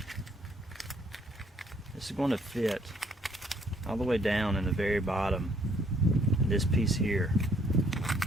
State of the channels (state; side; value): normal; both; correlation 0.64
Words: This is going to fit all the way down in the very bottom, this piece here.